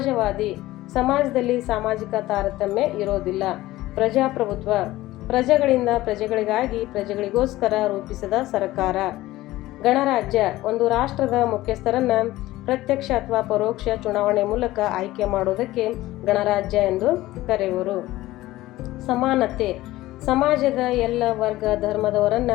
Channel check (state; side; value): quieter; right; 17.0 dB